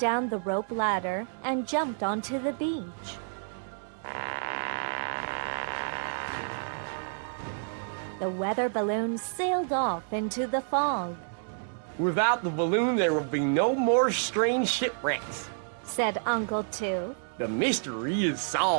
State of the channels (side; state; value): left; silent; digital silence